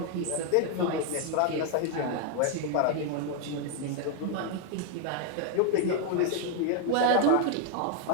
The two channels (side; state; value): both; different; correlation 0.00